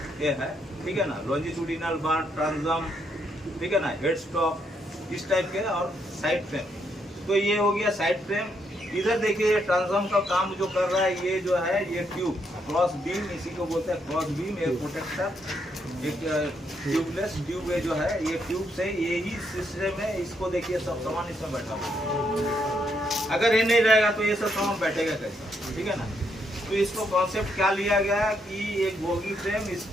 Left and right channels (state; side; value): normal; both; correlation 0.76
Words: ये है, ठीक है ना, लॉन्जिट्यूडिनल बार ट्रांसम, ठीक है ना, हेड स्टॉक इस टाइप के, और साइड फ्रेम। तो ये हो गया साइड फ्रेम। इधर देखिए ट्रांसम का काम जो कर रहा है ये जो है ये ट्यूब, क्रॉस बीम, इसी को बोलते हैं क्रॉस बीम, एक प्रोटेक्टर, एक ट्यूबलेस ट्यूब है जो है ये ट्यूब से यही सिस्टम है। इसको देखिए सब सामान इसमें बैठा हुआ। अगर ये नहीं रहेगा तो ये सब सामान बैठेगा कैसे, ठीक है ना। तो इसको कॉन्सेप्ट क्या लिया गया है कि एक बोगी फ्रेम,